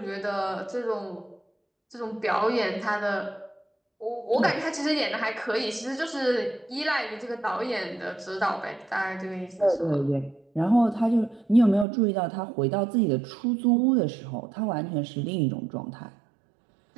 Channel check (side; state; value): left; drops out; at 11.9 s